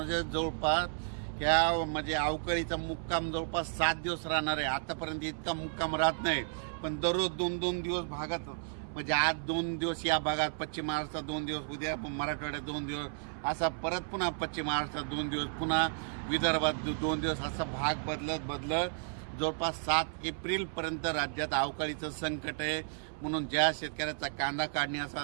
जवळपास ह्या म्हणजे अवकाळीचा मुक्काम जवळपास 7 दिवस राहणार आहे. आतापर्यंत इतका मुक्काम राहत नाही, पण दररोज 2-2 दिवस भागात म्हणजे आज 2 दिवस या भागात, पश्चिम महाराष्ट्रात 2 दिवस, उद्या मराठवाड्यात 2 दिवस, असा परत पुन्हा पश्चिम महाराष्ट्रात 2 दिवस, पुन्हा विदर्भात 2 दिवस, असा भाग बदलत जवळपास 7 एप्रिलपर्यंत राज्यात अवकाळीचं संकट आहे. म्हणून ज्या शेतकऱ्याचा कांदा काढणे असा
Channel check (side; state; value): left; silent; 56 dB below the other